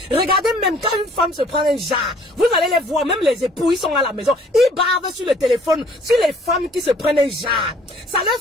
Regardez même quand une femme se prend un jar, vous allez les voir, même les époux, ils sont à la maison, ils bavent sur le téléphone, sur les femmes qui se prennent un jar. Ça leur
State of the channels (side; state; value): both; normal; correlation 0.57